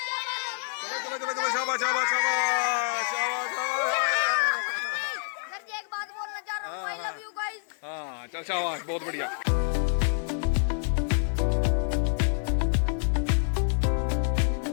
चलो चलो चलो, शाबाश शाबाश शाबाश शाबाश शाबाश। एक बात बोलना चाह रहा हूँ, आई लव यू गाइस। हाँ चल शाबाश, बहुत बढ़िया।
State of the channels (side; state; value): right; silent; 60 dB below the other